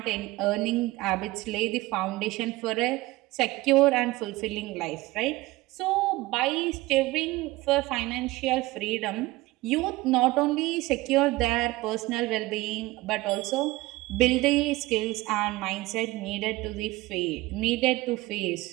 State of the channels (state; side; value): quieter; left; 19.6 dB